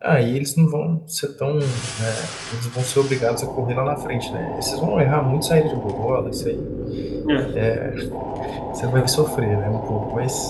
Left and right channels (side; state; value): both; identical; correlation 1.00